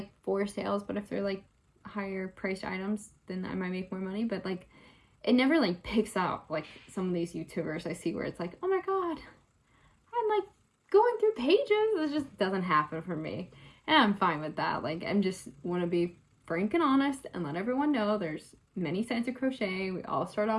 4 sales, but if they're like higher priced items, then I might make more money. But like, it never like picks up like some of these YouTubers I see where it's like, oh my god, I'm like going through pages. It just doesn't happen for me. And I'm fine with that. Like, I'm just want to be frank and honest and let everyone know there's many sides of crochet. We all start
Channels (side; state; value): both; identical; correlation 1.00